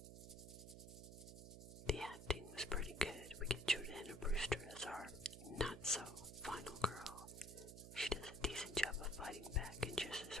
The acting was pretty good. We get Jordana Brewster as our not-so-final girl. She does a decent job of fighting back, and just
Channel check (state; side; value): noise; right; hum, 12 dB below the sound